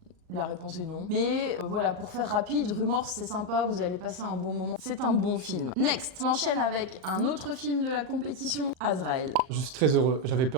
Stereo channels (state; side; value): late; left; 38 ms